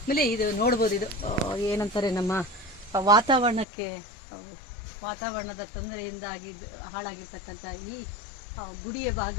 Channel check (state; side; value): drops out; right; at 3.7 s